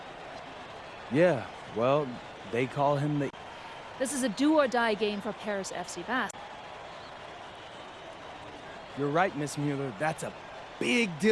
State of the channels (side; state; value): both; identical; correlation 1.00